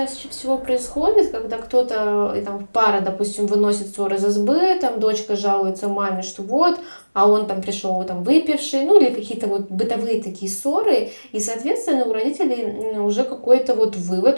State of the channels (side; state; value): both; inverted; correlation -1.00